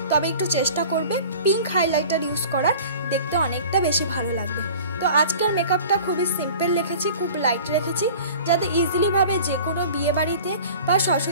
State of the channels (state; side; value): inverted; both; correlation -0.43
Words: তবে একটু চেষ্টা করবে পিঙ্ক হাইলাইটার ইউজ করার, দেখতে অনেকটা বেশি ভালো লাগবে। তো আজকের মেকআপটা খুবই সিম্পল রেখেছি, খুব লাইট রেখেছি, যাতে ইজিলিভাবে যে কোনো বিয়ে বাড়িতে বা